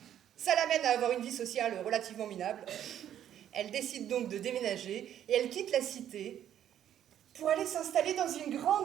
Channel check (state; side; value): quieter; left; 10.6 dB